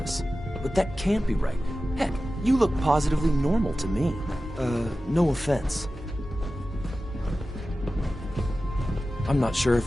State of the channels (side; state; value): both; normal; correlation 0.94